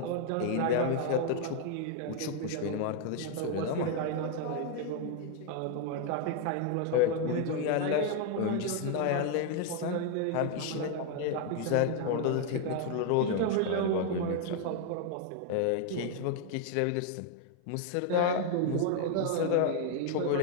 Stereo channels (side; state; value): both; different; correlation 0.00